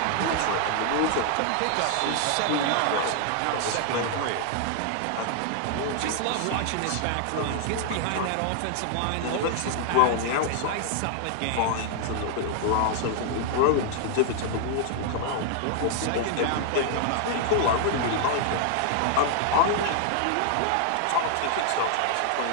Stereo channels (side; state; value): both; different; correlation 0.00